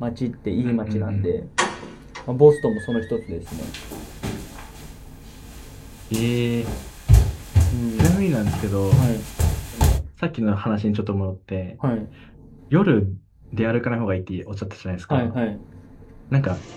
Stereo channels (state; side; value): identical; both; correlation 1.00